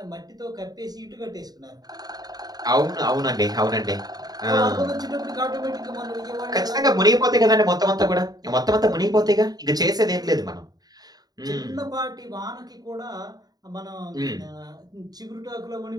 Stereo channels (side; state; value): left; late; 0.19 ms